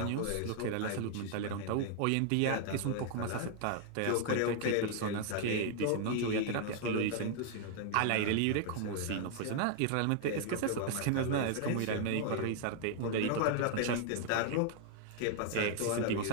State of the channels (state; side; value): different; both; correlation 0.00